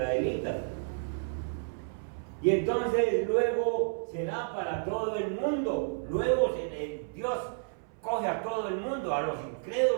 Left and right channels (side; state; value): left; silent; 57 dB below the other